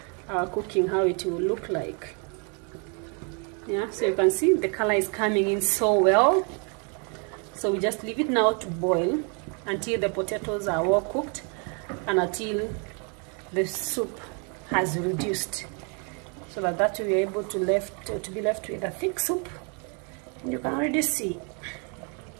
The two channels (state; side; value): quieter; left; 37.1 dB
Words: our cooking how it will look like. Yeah, so you can see the color is coming in so well. So we just leave it now to boil until the potatoes are well cooked and until the soup has reduced, so that we're able to be left with a thick soup. And you can already see